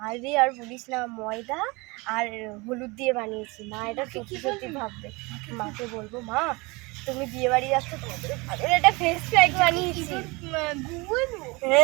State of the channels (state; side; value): quieter; left; 25.6 dB